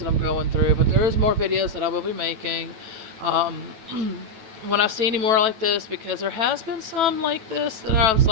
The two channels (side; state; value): left; late; 9.1 ms